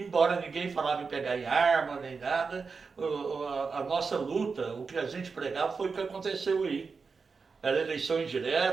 ninguém falava em pegar em arma nem nada, a nossa luta, o que a gente pregava foi o que aconteceu aí. Era eleição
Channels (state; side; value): quieter; left; 4.9 dB